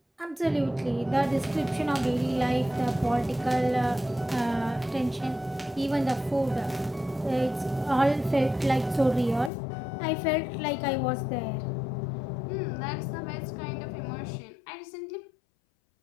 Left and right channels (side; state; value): right; drops out; at 9.5 s